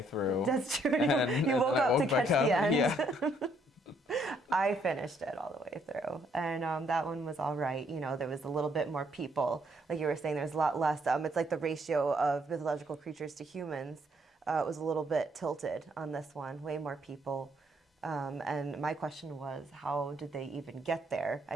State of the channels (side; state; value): both; normal; correlation 0.69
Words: through. That's true. You woke up to catch the end. Yeah. I finished it all the way through, and that one was all right. There was a little bit more people, like you were saying. There's a lot less. It's like the ratio of mythological creatures to humans was a little bit tilted on this one. Way more people, and my question was, how did they even get there? I